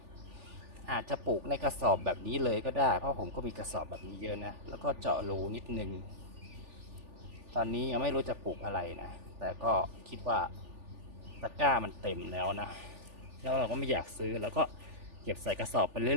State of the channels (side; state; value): left; late; 3.4 ms